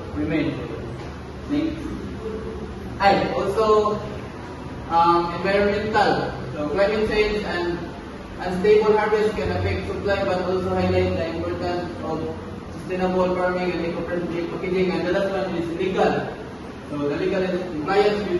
remain. Next. Also environmental. So climate change and unstable harvest can affect supply, but also highlight the importance of sustainable farming and eco-friendly packaging. And the last one is legal. So the legal is compliance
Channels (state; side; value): identical; both; correlation 1.00